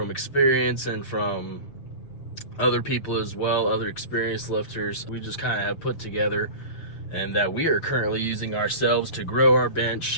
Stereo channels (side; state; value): right; late; 6.6 ms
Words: experience and from other people as well, other experienced lifters. We just kind of have put together and that we are currently using ourselves to grow our